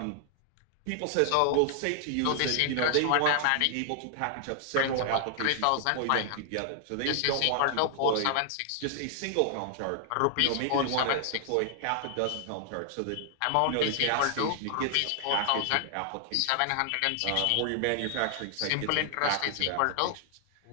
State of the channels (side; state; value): both; different; correlation 0.00